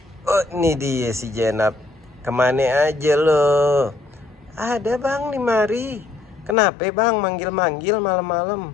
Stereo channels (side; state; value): right; drops out; at 6.6 s